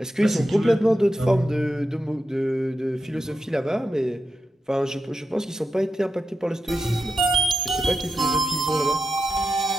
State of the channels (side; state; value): both; normal; correlation 0.88